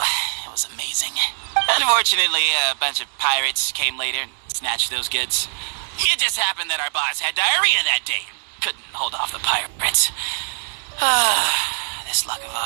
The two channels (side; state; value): left; silent; 61 dB below the other